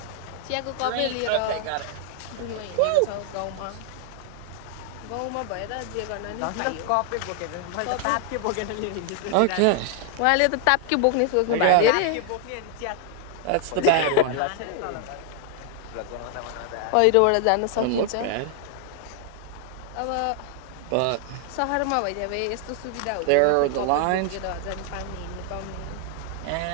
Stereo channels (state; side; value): different; both; correlation 0.00